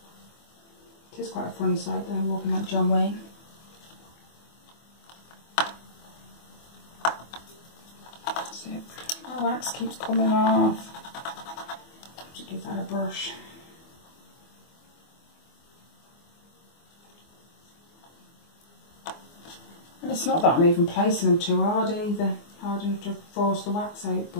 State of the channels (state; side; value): late; right; 24 ms